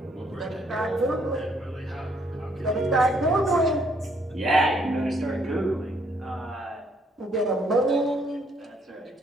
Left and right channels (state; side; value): normal; both; correlation 0.68